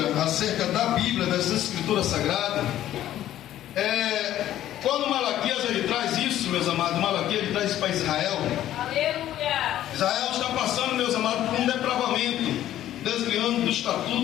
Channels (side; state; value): right; quieter; 12.6 dB